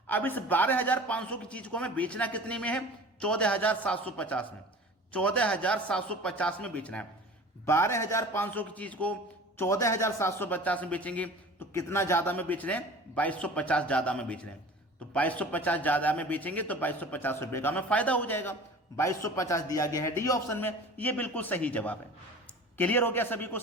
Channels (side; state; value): both; normal; correlation 0.41